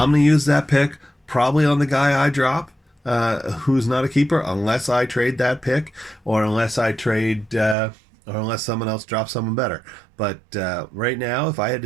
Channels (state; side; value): drops out; left; at 7.8 s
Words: gonna use that pick probably on the guy I drop, who's not a keeper, unless I trade that pick, or unless I trade, or unless someone else drops someone better. But right now, if I had